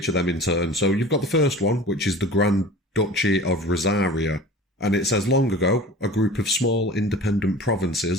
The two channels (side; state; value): both; normal; correlation 0.40